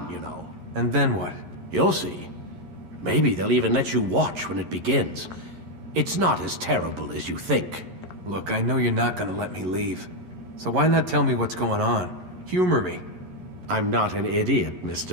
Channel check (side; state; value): left; late; 11 ms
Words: you know. And then what? You'll see. Maybe they'll even let you watch when it begins. It's not as terrible as you think. Look, I know you're not gonna let me leave. So why not tell me what's going on? Humor me. I'm not an idiot,